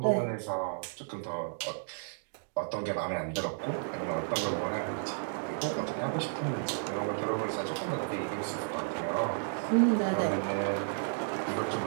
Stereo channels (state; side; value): silent; left; digital silence